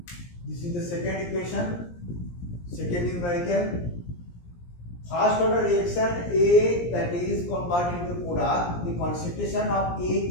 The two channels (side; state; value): right; late; 17 ms